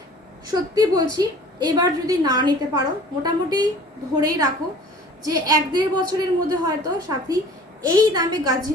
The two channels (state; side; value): normal; both; correlation 0.47